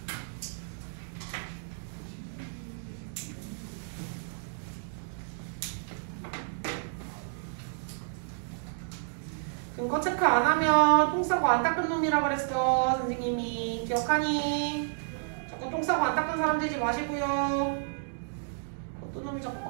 근거 체크 안 하면 똥 싸고 안 닦은 놈이라 그랬어. 선생님이 기억하니? 자꾸 똥 싸고 안 닦은 사람 되지 마시고요. 어떤 놈이 자꾸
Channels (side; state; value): left; silent; digital silence